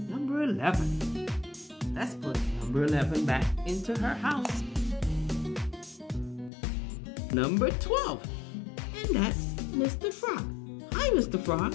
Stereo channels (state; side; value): drops out; right; at 6.5 s